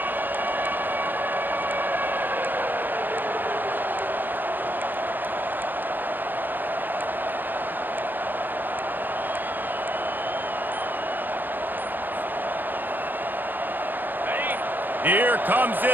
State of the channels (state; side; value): late; left; 0.088 ms